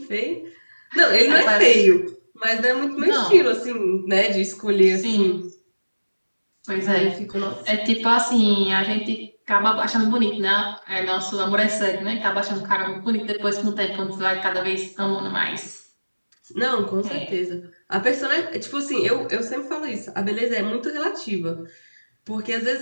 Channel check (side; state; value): both; inverted; correlation -1.00